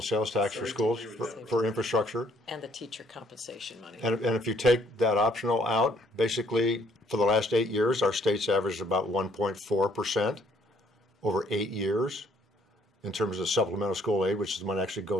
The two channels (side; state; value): both; normal; correlation 0.64